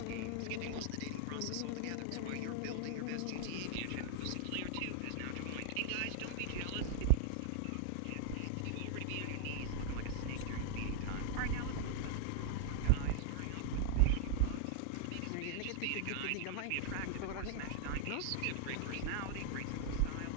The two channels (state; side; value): different; both; correlation 0.00